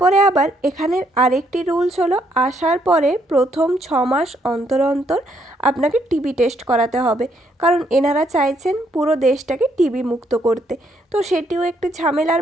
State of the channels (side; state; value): both; normal; correlation 0.72